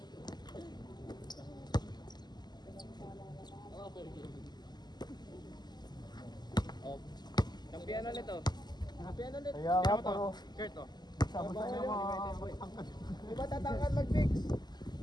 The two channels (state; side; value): late; right; 0.21 ms